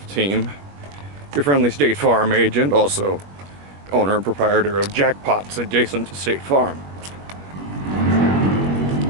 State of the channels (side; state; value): left; late; 21 ms